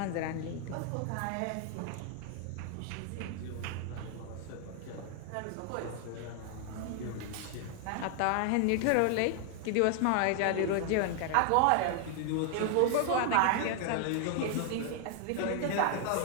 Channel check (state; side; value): different; both; correlation 0.00